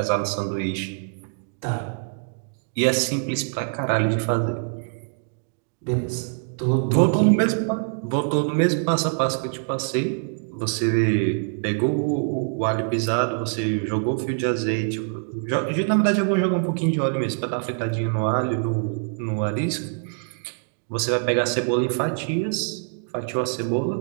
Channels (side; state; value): left; silent; 62 dB below the other